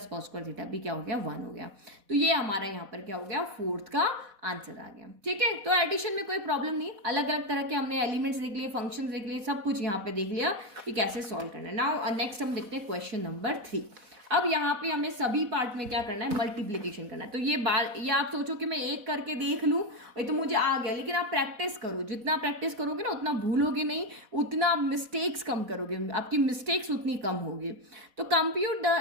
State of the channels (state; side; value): late; left; 4.1 ms